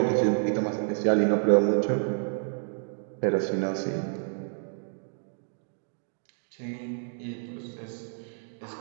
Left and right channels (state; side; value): silent; left; digital silence